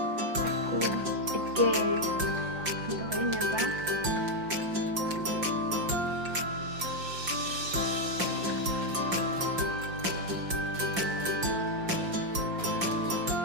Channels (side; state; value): left; late; 5.7 ms